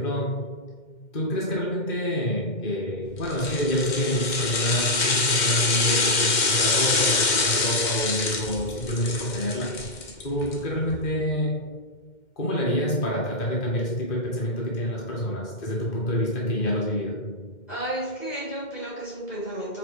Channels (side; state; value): right; late; 2.1 ms